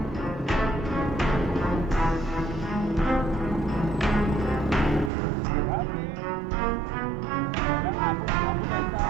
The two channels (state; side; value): drops out; left; at 5.1 s